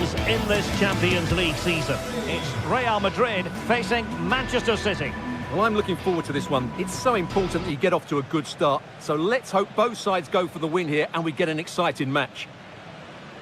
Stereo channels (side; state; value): both; identical; correlation 1.00